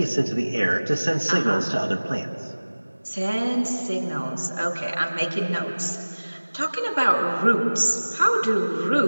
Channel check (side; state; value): both; inverted; correlation -1.00